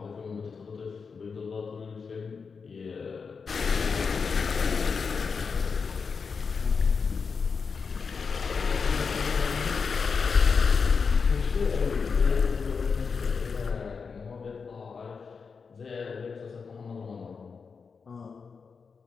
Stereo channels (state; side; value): quieter; right; 5.4 dB